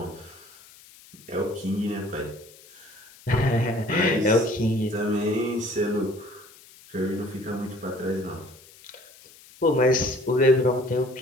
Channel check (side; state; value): left; noise; hiss, 23 dB below the sound